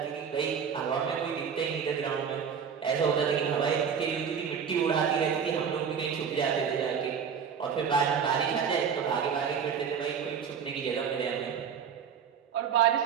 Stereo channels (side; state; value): left; quieter; 7.0 dB